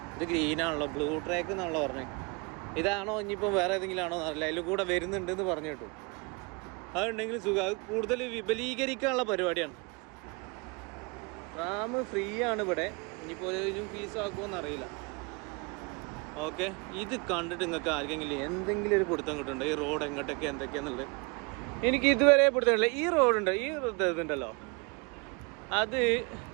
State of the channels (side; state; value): left; quieter; 30.1 dB